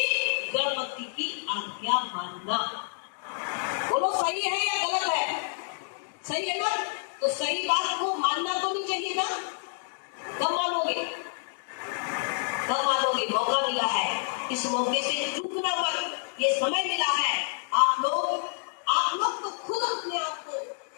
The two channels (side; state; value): right; silent; digital silence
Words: गणपति की आज्ञा मानना। बोलो सही है या गलत है? सही है ना? तो सही बात को मानना तो नहीं चाहिए ना? कब मानोगे? कब मानोगे? मौका मिला है, इस मौके से चूकना मत। ये समय मिला है, आप लोग तो खुद अपने आप को